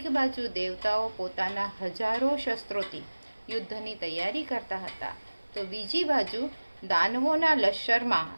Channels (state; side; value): inverted; both; correlation -1.00